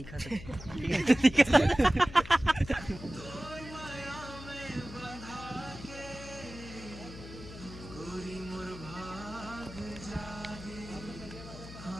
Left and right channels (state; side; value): noise; left; hum, 13 dB below the sound